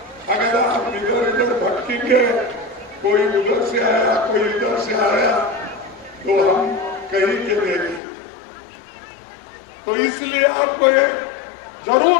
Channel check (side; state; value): right; drops out; at 8.0 s